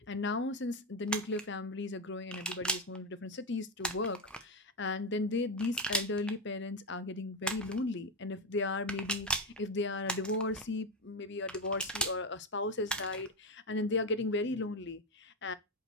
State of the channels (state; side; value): normal; both; correlation 0.11